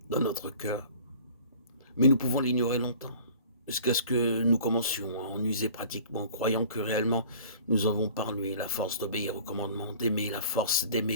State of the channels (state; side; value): inverted; both; correlation -0.47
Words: dans notre cœur. Mais nous pouvons l'ignorer longtemps, jusqu'à ce que nous commencions à en user pratiquement, croyant que réellement nous avons par lui la force d'obéir au commandement, d'aimer, la force